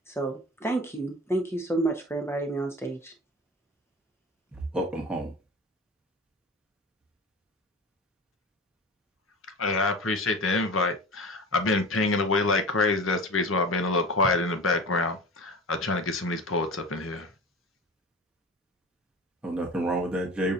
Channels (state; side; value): normal; both; correlation 0.34